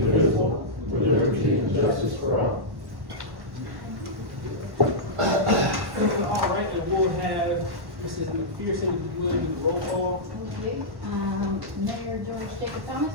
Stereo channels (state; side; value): late; left; 1.1 ms